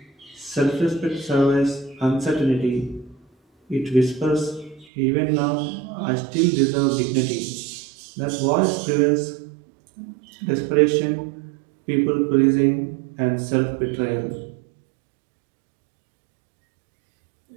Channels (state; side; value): drops out; left; at 4.9 s